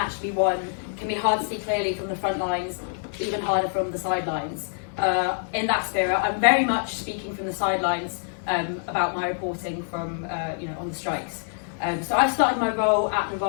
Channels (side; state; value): right; silent; digital silence